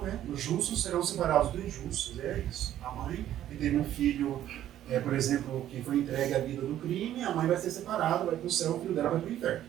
né? Os justos serão separados dos injustos, é isso. A mãe que teve um filho, por exemplo, que foi entregue à vida do crime, a mãe vai ser separada, vai para o céu, o filho dela vai para o inferno.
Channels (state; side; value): quieter; left; 12.0 dB